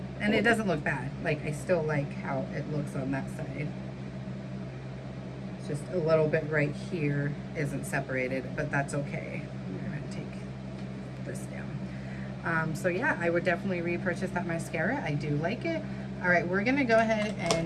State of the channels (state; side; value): identical; both; correlation 1.00